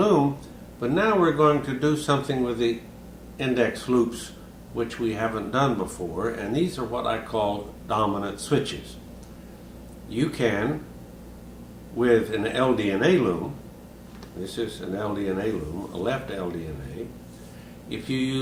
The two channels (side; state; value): both; identical; correlation 1.00